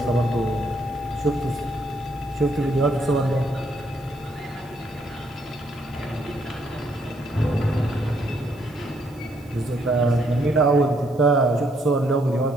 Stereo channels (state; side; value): noise; right; hiss, 29 dB below the sound